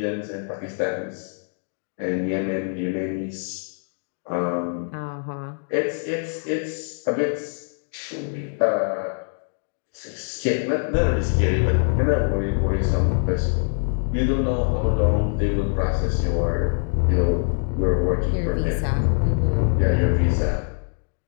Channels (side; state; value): right; silent; 58 dB below the other